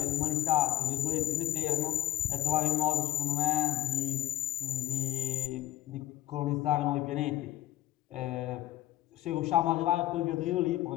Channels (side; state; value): right; quieter; 13.2 dB